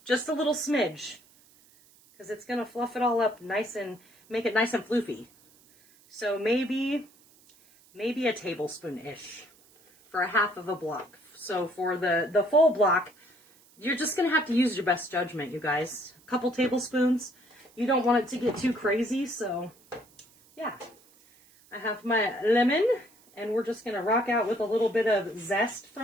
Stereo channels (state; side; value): noise; right; hiss, 28 dB below the sound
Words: Just a little smidge. Because it's going to fluff it all up nice and make it nice and floofy. So maybe a tablespoon-ish for a half of a block. So for the full block, you're just going to have to use your best judgment, you guys. A couple tablespoons. You don't want it to get too crazy, so yeah. I have my lemon, and we're just going to rock out with a little bit of zest